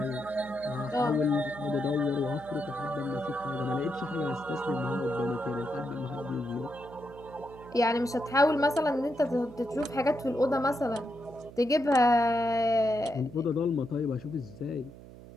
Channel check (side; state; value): right; noise; hum, 17 dB below the sound